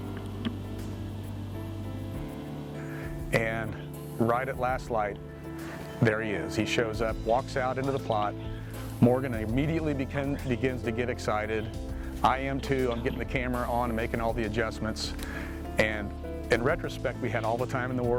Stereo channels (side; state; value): both; identical; correlation 1.00